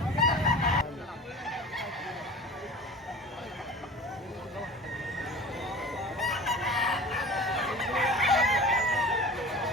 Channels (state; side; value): normal; both; correlation 0.39